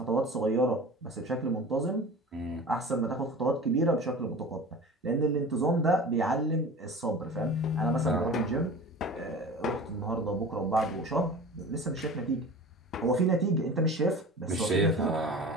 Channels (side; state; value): both; normal; correlation 0.37